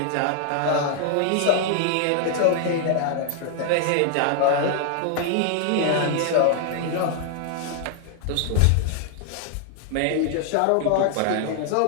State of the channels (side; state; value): both; different; correlation 0.00